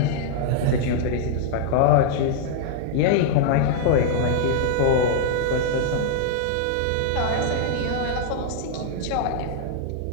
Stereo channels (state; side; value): different; both; correlation -0.01